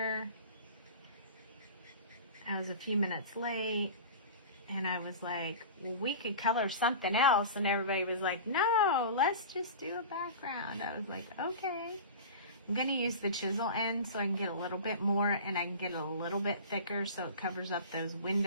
I was a few minutes late. And I was like, well, we could color something else. And everybody was like, no, let's just do a background. I was like, okay. I'm going to use the chisel end so I can get a little bit more, and I can get it a little bit thicker so it covers up those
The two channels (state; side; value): inverted; both; correlation -0.35